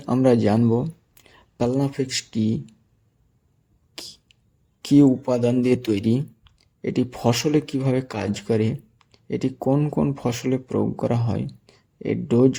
আমরা জানব প্লানোফিক্স কি উপাদান দিয়ে তৈরি, এটি ফসলে কিভাবে কাজ করে, এটি কোন কোন ফসলে প্রয়োগ করা হয়, এর ডোজ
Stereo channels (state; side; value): identical; both; correlation 1.00